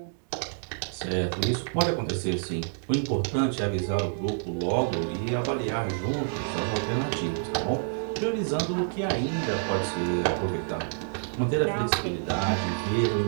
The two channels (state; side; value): silent; left; digital silence